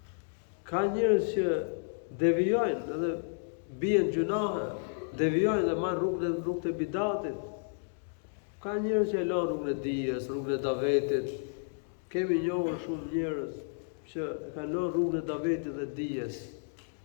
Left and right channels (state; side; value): silent; right; digital silence